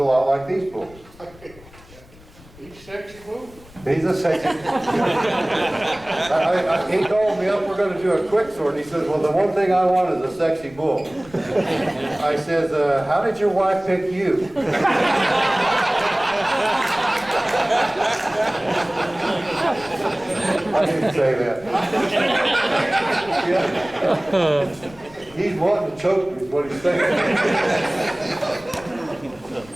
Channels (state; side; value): noise; left; rumble, 23 dB below the sound